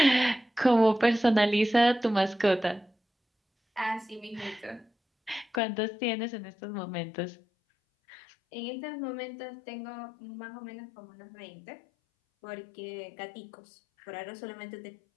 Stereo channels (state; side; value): drops out; right; at 5.6 s